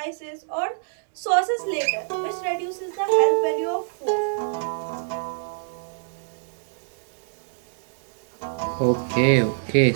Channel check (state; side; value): silent; left; digital silence